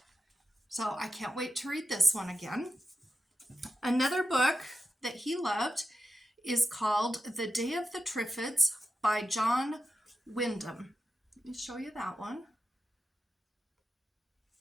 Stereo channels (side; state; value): both; normal; correlation 0.90